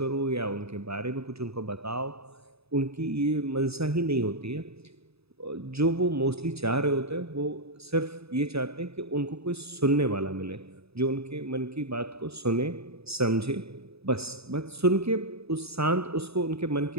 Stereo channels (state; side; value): late; left; 0.78 ms